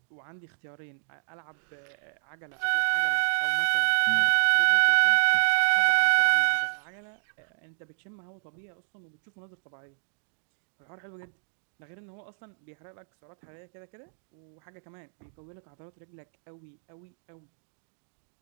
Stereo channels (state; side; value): silent; left; digital silence